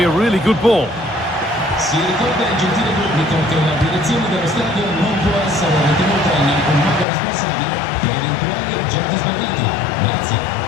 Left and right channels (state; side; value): drops out; right; at 7.1 s